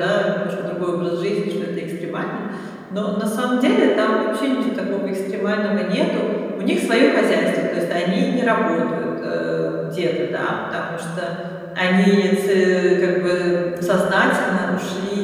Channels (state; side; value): identical; both; correlation 1.00